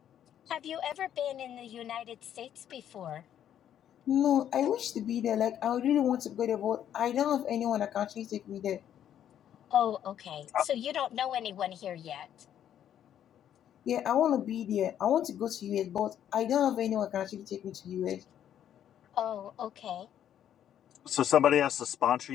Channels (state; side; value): quieter; right; 10.2 dB